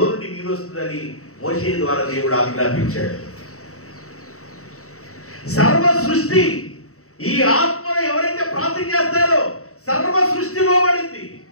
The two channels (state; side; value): late; right; 0.64 ms